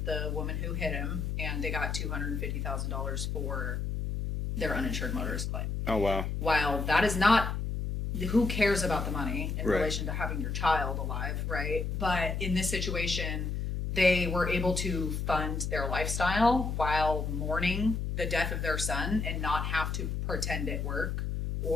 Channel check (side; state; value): left; noise; hum, 2 dB below the sound